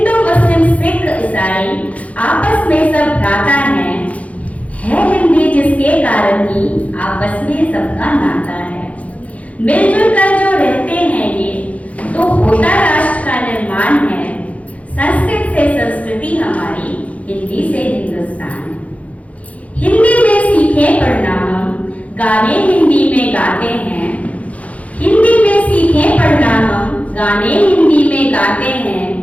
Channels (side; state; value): right; late; 0.067 ms